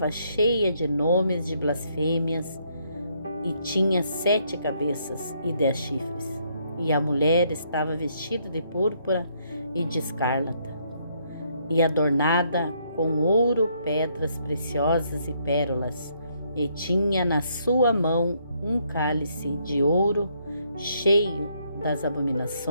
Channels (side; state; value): both; inverted; correlation -0.71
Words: cheia de nomes de blasfêmias, e tinha 7 cabeças e 10 chifres. E a mulher estava vestida de púrpura e de escarlata, e adornada com ouro, pedras preciosas e pérolas, e tinha na sua mão um cálice de ouro cheio das